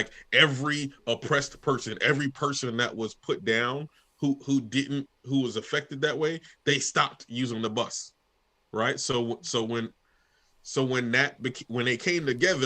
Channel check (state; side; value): identical; both; correlation 1.00